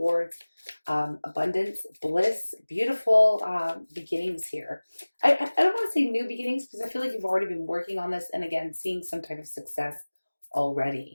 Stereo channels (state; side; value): inverted; both; correlation -1.00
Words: abundance, bliss, beautiful beginnings here. I don't want to say new beginnings because I feel like you've already been working on this and again, seeing some type of success